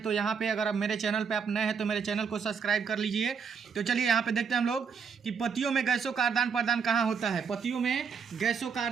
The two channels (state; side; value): quieter; left; 6.2 dB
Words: तो यहाँ पे अगर आप मेरे चैनल पे आप नए हैं तो मेरे चैनल को सब्सक्राइब कर लीजिए। तो चलिए यहाँ पे देखते हैं हम लोग कि पतियों में गैसों का आदान प्रदान कहाँ होता है। पतियों में गैसों का